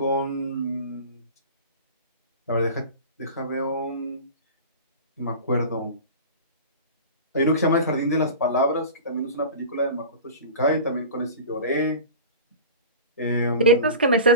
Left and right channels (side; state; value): both; inverted; correlation -0.35